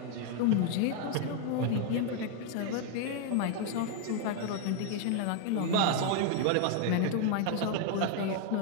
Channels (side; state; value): both; different; correlation 0.00